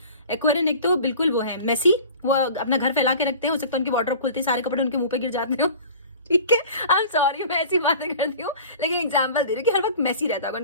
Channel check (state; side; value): inverted; both; correlation -0.42